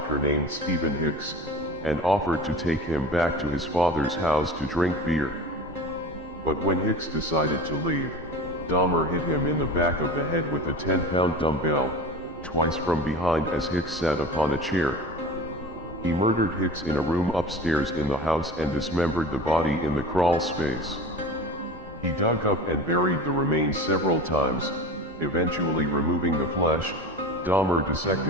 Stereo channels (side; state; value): both; normal; correlation 0.34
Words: named Stephen Hicks, and offered to take him back to his father's house to drink beer. But when Hicks decided to leave, Dahmer hit him in the back of the head with a 10-pound dumbbell, twice from behind as Hicks sat upon a chair. He murdered Hicks in a room upstairs in the house and dismembered the body in the crawl space. He dug up and buried the remains several times, eventually removing the flesh. Dahmer